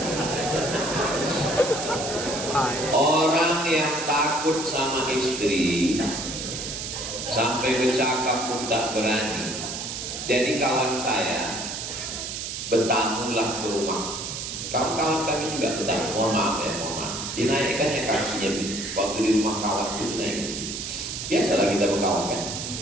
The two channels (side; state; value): right; noise; hiss, 6 dB below the sound